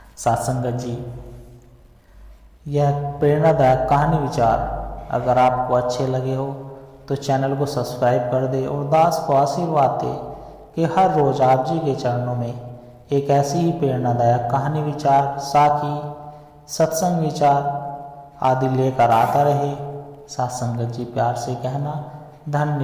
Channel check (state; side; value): identical; both; correlation 1.00